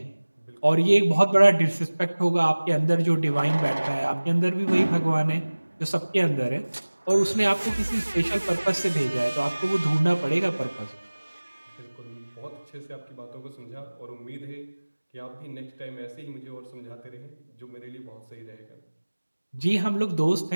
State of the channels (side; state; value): both; inverted; correlation -1.00